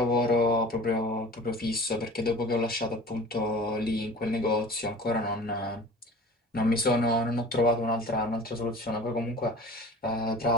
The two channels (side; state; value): both; normal; correlation 0.42